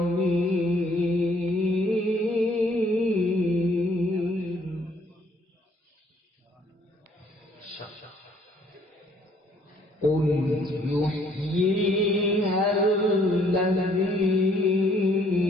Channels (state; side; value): normal; both; correlation 0.63